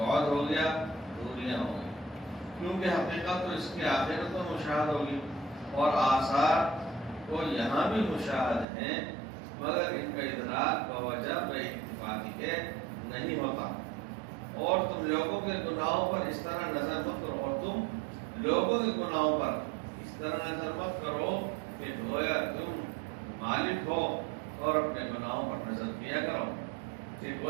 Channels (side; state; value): left; drops out; at 8.7 s